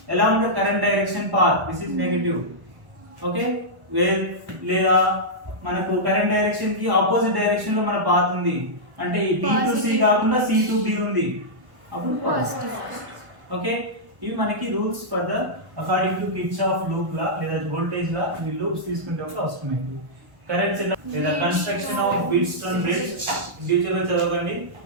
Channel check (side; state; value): left; late; 1.1 ms